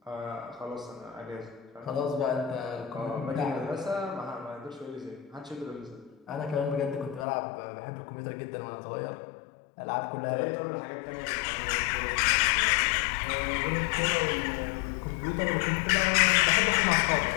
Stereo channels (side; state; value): right; drops out; at 7.2 s